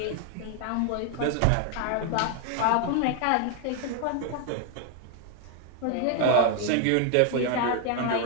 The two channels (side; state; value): both; different; correlation 0.00